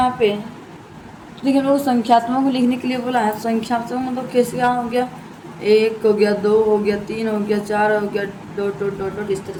पे, तो देखिए हम लोग संख्यात्मक में लिखने के लिए बोला है। संख्यात्मक मतलब कैसे क्या हो गया, 1 हो गया, 2 हो गया, 3 हो गया, 4 हो गया, डॉट डॉट डॉट डॉट, इस तरह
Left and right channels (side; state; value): both; identical; correlation 1.00